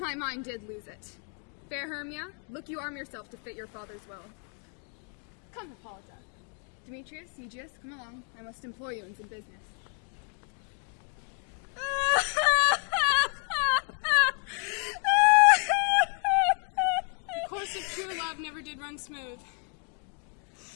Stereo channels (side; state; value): right; quieter; 37.6 dB